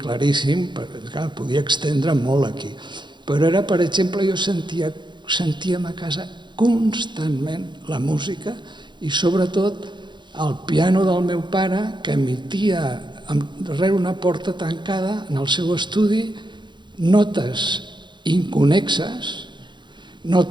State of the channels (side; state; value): left; late; 0.22 ms